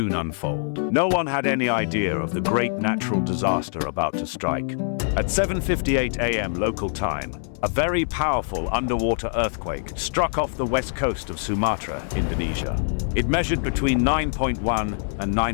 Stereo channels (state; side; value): silent; right; 62 dB below the other